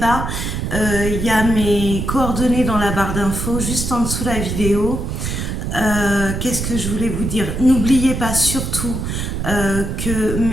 Il y a mes coordonnées dans la barre d'infos, juste en dessous de la vidéo. Qu'est-ce que je voulais vous dire? N'oubliez pas surtout que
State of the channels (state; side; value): noise; right; rumble, 3 dB below the sound